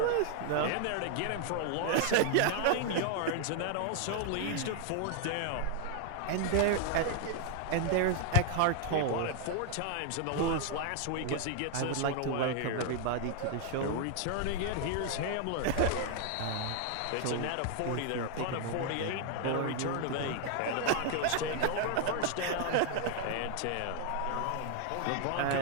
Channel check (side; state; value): both; different; correlation 0.00